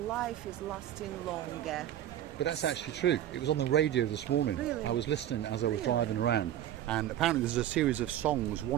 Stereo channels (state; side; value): quieter; left; 11.8 dB